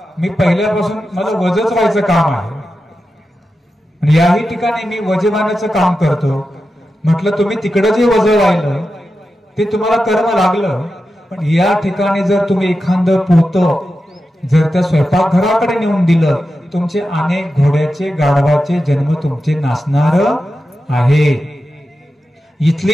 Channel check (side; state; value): both; normal; correlation 0.91